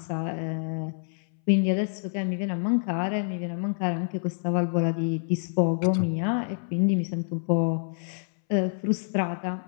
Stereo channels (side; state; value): right; silent; 60 dB below the other